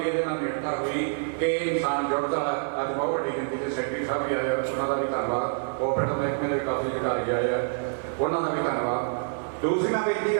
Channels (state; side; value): silent; left; digital silence